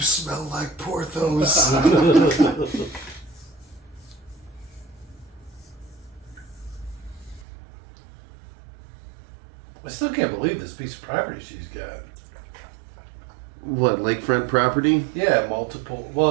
like Porthos. I still can't believe this piece of property she's got. What, lakefront property? Yeah, multiple.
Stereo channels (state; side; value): drops out; left; at 7.5 s